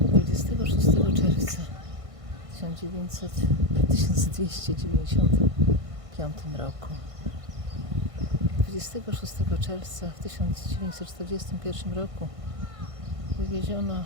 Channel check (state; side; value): late; left; 1.5 ms